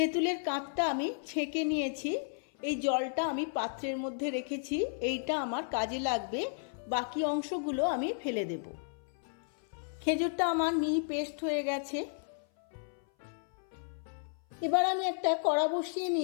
কাঁচটা আমি ছেঁকে নিয়েছি। এই জলটা আমি পাত্রের মধ্যে রেখেছি, এইটা আমার কাজে লাগবে। বাকি অংশগুলো আমি ফেলে দেব। খেজুরটা আমার মিহি পেস্ট হয়ে গেছে। এবার আমি একটা কড়া বসিয়ে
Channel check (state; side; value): silent; right; 55 dB below the other